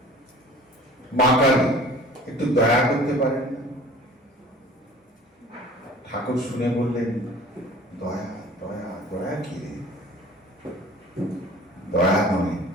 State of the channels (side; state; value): both; normal; correlation 0.46